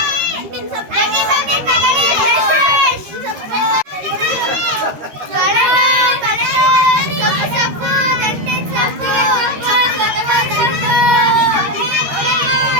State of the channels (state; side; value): late; left; 13 ms